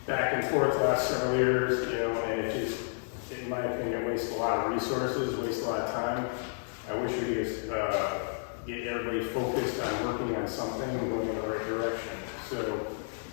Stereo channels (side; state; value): right; silent; digital silence